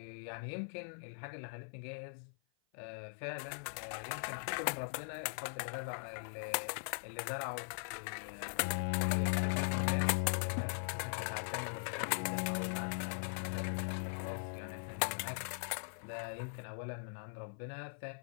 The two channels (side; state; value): right; silent; 51 dB below the other